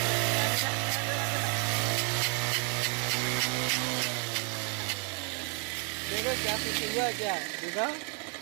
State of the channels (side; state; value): left; quieter; 37.7 dB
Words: देखो क्या कुछ हुआ क्या, देखो।